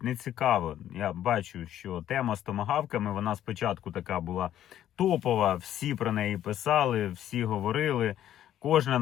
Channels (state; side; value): quieter; right; 11.6 dB